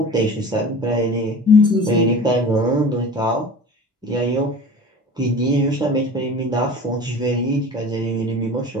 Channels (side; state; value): both; normal; correlation 0.38